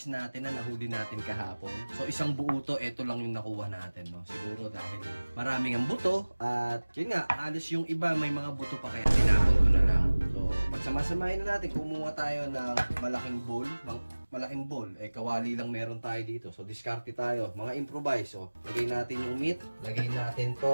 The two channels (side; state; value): both; inverted; correlation -1.00